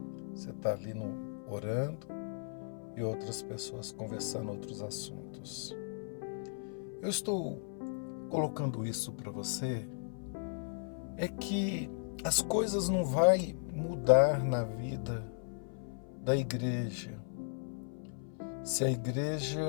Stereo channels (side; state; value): right; silent; 54 dB below the other